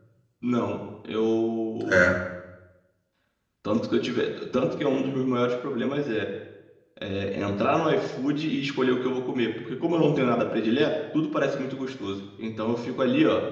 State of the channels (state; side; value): identical; both; correlation 1.00